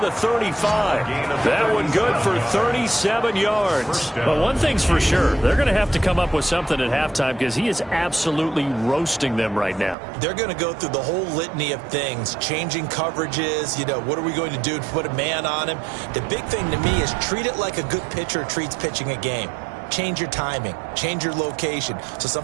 35. That one good for 37 yards. But one thing's for sure, they're going to have to come up with something at halftime because he is absolutely roasting them right now. They're going to go through the whole litany of things, changing coverages, what are we going to do to put a man on him? The big thing to me is treat it like a good pitcher treats pitching a game. Change your timing, change your location. So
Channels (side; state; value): left; drops out; at 10.0 s